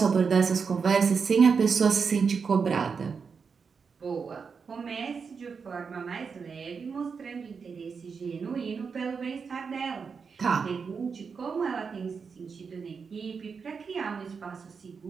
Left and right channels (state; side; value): quieter; left; 5.6 dB